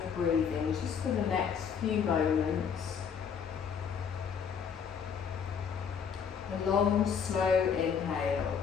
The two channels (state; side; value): quieter; right; 7.0 dB